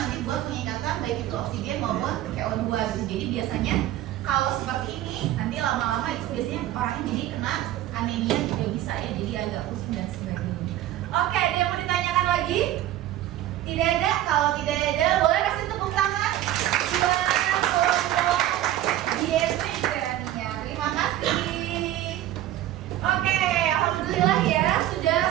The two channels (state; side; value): quieter; left; 13.5 dB